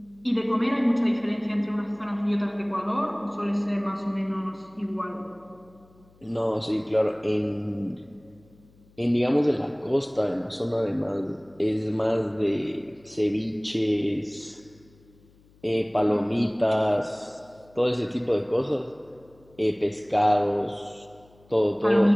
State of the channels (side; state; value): left; noise; hum, 29 dB below the sound